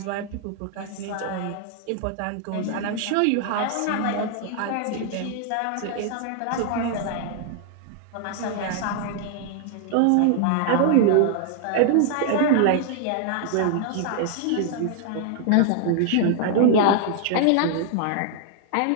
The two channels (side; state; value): both; different; correlation 0.00